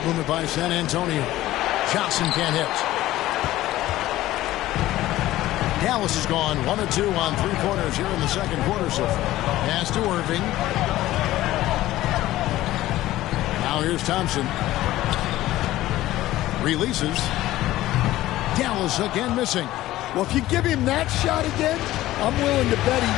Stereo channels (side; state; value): right; quieter; 15.6 dB